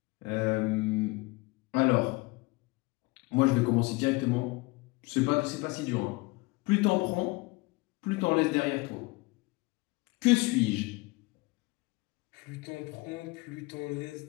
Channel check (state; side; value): quieter; right; 24.6 dB